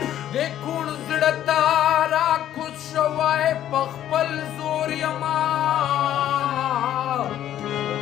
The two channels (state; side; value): quieter; right; 11.6 dB